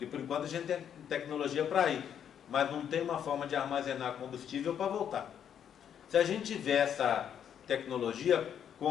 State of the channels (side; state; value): right; quieter; 8.9 dB